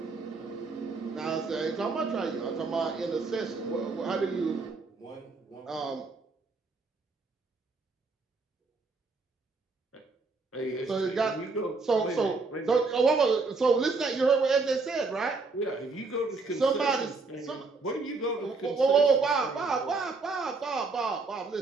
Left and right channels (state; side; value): quieter; left; 4.0 dB